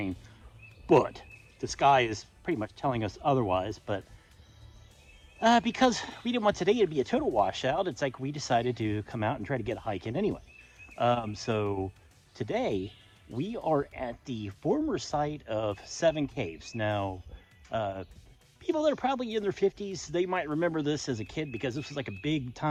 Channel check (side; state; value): both; identical; correlation 1.00